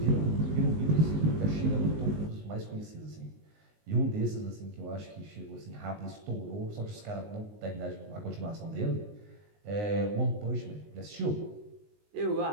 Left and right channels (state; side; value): late; left; 19 ms